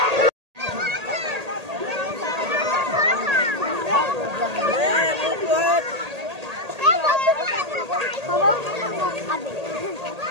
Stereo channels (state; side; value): late; left; 1.8 ms